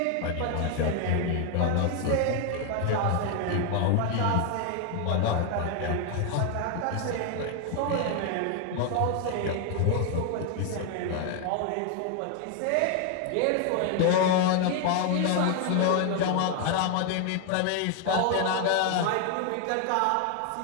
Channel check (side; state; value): both; different; correlation 0.00